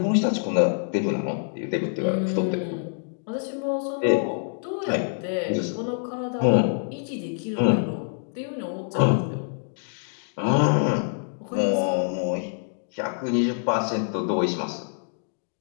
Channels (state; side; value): silent; right; digital silence